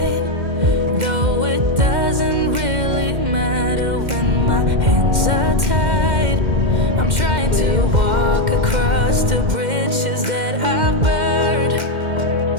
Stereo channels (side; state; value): left; late; 2.1 ms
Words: though it doesn't really matter when my hands are tied. I'm trying to walk across the bridges that I've burned.